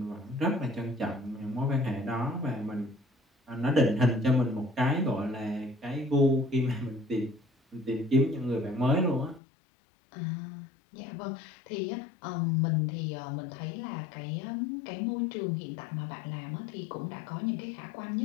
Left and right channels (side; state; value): right; drops out; at 9.4 s